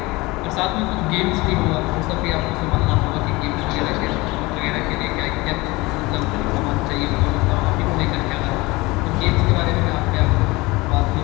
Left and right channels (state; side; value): quieter; right; 22.5 dB